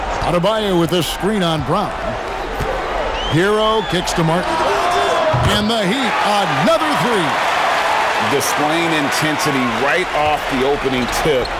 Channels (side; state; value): both; identical; correlation 1.00